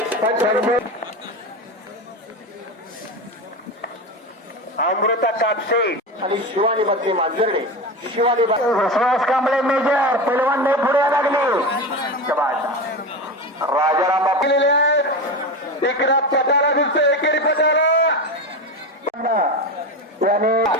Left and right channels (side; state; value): both; normal; correlation 0.22